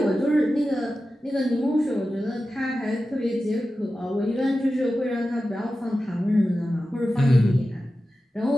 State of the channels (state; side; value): normal; both; correlation 0.93